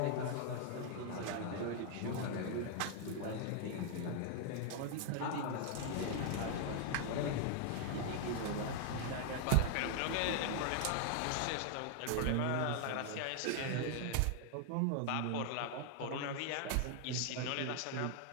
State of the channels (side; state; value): both; different; correlation 0.00